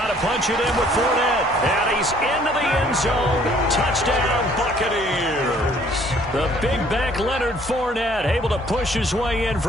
to punch it in with Fournette. And he's into the end zone. Touchdown, Buccaneers. The big back Leonard Fournette able to push his way in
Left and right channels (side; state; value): both; normal; correlation 0.59